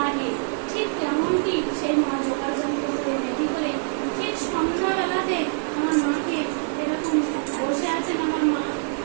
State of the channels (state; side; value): silent; left; digital silence